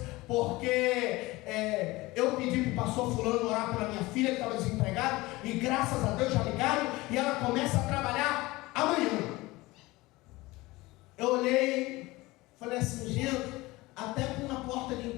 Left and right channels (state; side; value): quieter; right; 20.6 dB